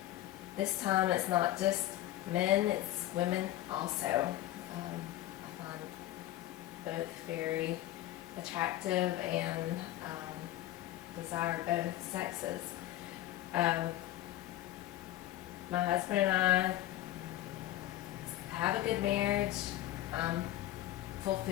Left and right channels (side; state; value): right; quieter; 14.6 dB